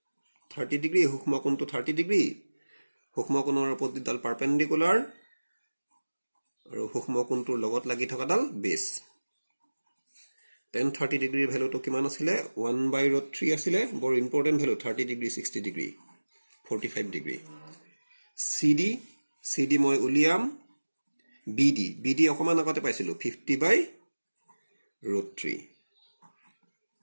30 ডিগ্ৰী। সূক্ষ্ম কোণটো 30 ডিগ্ৰী, সূক্ষ্ম কোণৰ অপজিটডাল পাৰপেণ্ডিকুলাৰ আৰু সূক্ষ্ম কোণটোৰ লগত লাগি থকাডাল বেছ। টেন 30 ডিগ্ৰীৰ ভেলুটো কিমান আছিলে? 1/√3 আছিলে। বৰ important value, 30 degree, 60 degree, 45 degree. CD মই উলিয়াম। BD অকমান আগতে পাইছিলো, 50/√3।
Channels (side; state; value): both; inverted; correlation -1.00